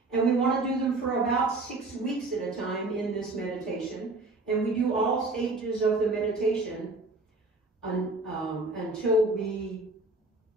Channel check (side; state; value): left; quieter; 3.1 dB